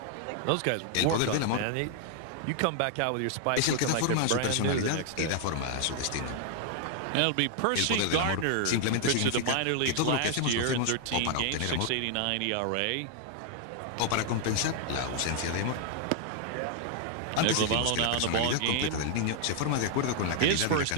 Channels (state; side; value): different; both; correlation 0.00